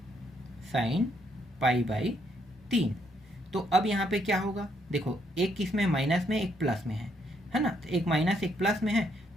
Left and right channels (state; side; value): normal; both; correlation 0.72